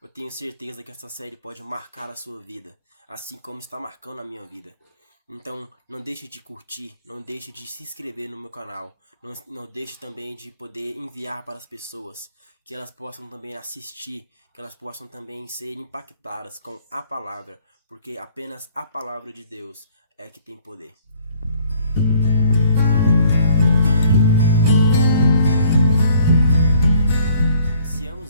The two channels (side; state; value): both; inverted; correlation -0.60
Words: tenho certeza que essa série pode marcar a sua vida, assim como está marcando a minha vida. Então, não deixe de curtir, não deixe de se inscrever no meu canal, não deixe também de poder enviar para as pessoas, que elas possam também assistir, que elas possam também ser impactadas com a palavra, porque apenas a palavra de Deus é que tem poder.